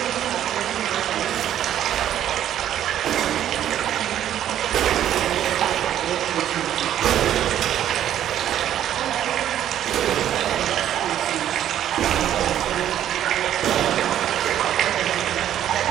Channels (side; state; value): left; quieter; 11.1 dB